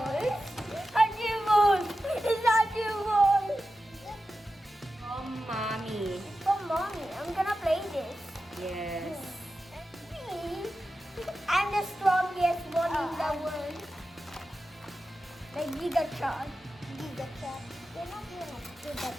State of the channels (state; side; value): normal; both; correlation 0.92